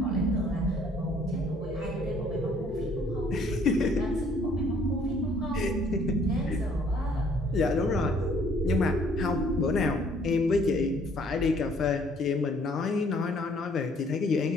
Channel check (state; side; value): normal; both; correlation 0.61